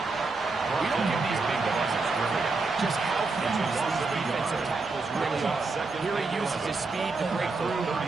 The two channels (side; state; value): left; quieter; 3.8 dB